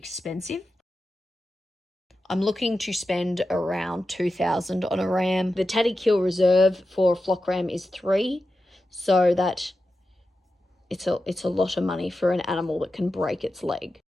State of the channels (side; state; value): both; normal; correlation 0.91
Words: I'm looking to spend around $2,000 on a ram. The Tatty Kill reserve for a flock ram is 3, so that it's a lot of money for an animal that can break its leg.